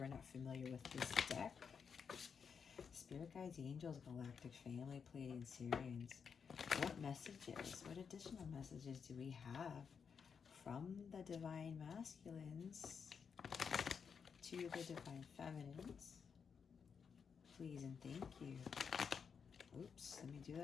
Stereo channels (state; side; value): quieter; right; 6.4 dB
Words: are not familiar with this deck. Spirit Guides, Angels, Galactic Family, Pleiadian Sirians. What messages, what additional messages do we have from the Divine Masculines to the Divine Feminines? Please and thank you. Oops, let me do